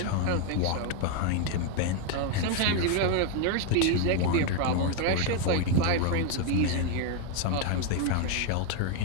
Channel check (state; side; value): different; both; correlation 0.01